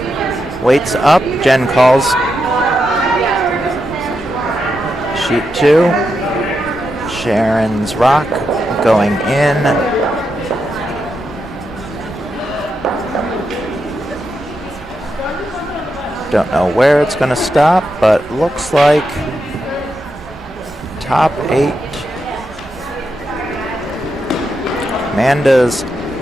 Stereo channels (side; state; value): both; normal; correlation 0.85